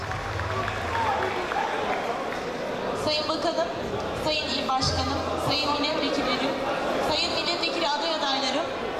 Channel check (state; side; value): identical; both; correlation 1.00